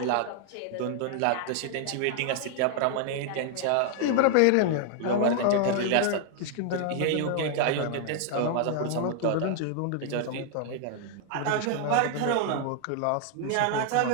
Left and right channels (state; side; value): different; both; correlation 0.00